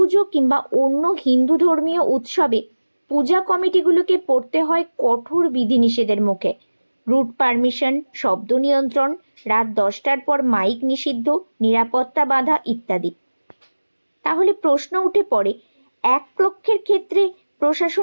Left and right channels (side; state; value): both; inverted; correlation -1.00